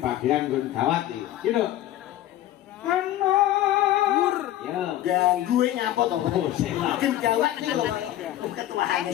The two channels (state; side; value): quieter; right; 13.6 dB